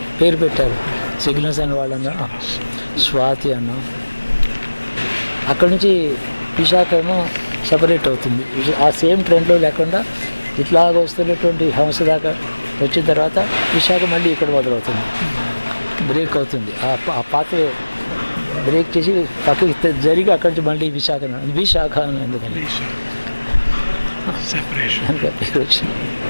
పేరు పెట్టారు. సిగ్నస్ అని వాళ్ళన్నా స్వాతి అన్న. అక్కడి నుంచి విశాఖ ఏమో సపరేట్ అవుతుంది. ఆ సేమ్ ట్రెండ్లో లేకుండా ఇట్లాగ వస్తున్నటువంటి హంస దాకా వచ్చిన తర్వాత విశాఖ మళ్ళీ ఇక్కడ మొదలవుతుంది, బ్రేక్ అవుతుంది. ఆ పాత్ర బ్రేక్ చేసి పక్కకి జరిగి అక్కడి నుంచి మళ్ళీ విశాఖ అని. ఎందుకని సెపరేషన్. దానికి ఆ పేరు వచ్చింది.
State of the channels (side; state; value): both; inverted; correlation -1.00